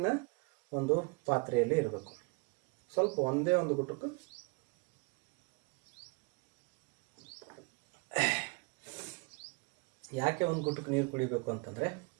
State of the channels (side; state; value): left; quieter; 31.5 dB